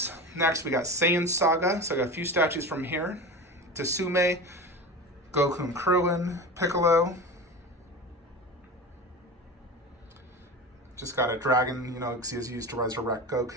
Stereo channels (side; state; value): both; normal; correlation 0.29